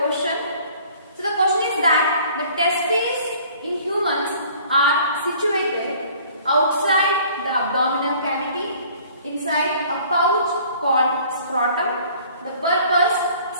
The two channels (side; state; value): both; inverted; correlation -0.53